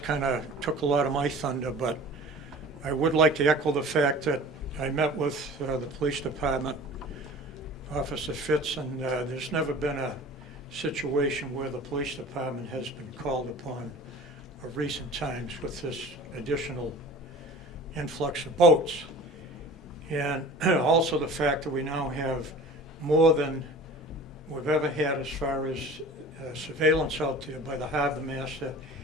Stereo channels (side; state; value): both; normal; correlation 0.41